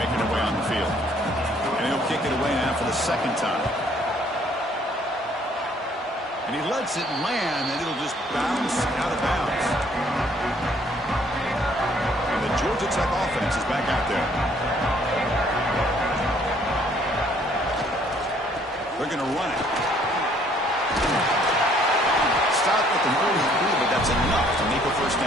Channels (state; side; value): normal; both; correlation 0.62